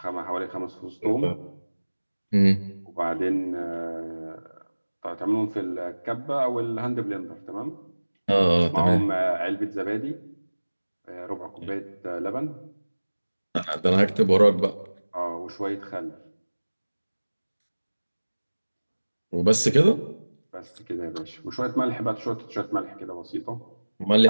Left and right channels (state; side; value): inverted; both; correlation -1.00